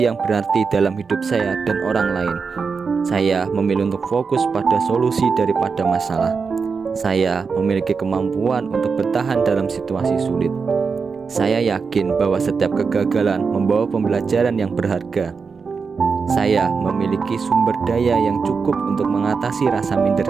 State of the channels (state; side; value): quieter; left; 5.2 dB